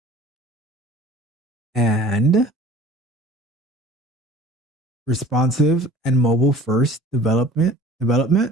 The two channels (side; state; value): both; normal; correlation 0.47